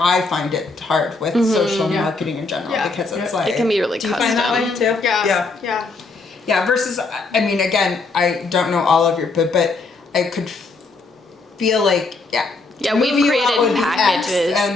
find it hard with social marketing in general because it's like, It can be really do you find that way custom. too? Yeah. Yeah, versus, I mean, again, I don't know all of your, but I could feel like, Yeah, move we've you out created would be X, packages.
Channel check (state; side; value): quieter; right; 3.7 dB